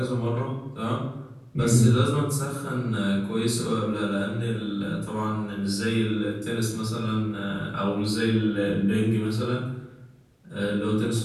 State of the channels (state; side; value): identical; both; correlation 1.00